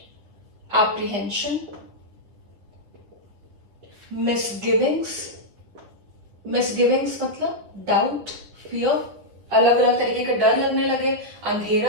apprehension, मिसगिविंग्स। मिसगिविंग्स मतलब डाउट, फियर, अलग अलग तरीके का डर लगने लगे,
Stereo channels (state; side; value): late; left; 10 ms